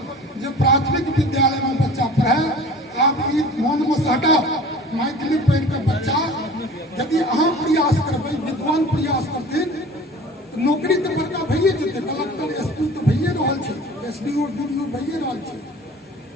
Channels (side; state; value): both; normal; correlation 0.43